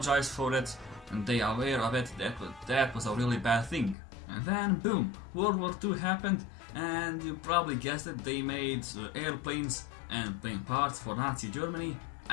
for it. And they are aware of it, that was a really bad thing. And then boom, World War II happened, and you probably guessed it, they made airplanes and plane parts for Nazi Germany.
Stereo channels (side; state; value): right; drops out; at 4.0 s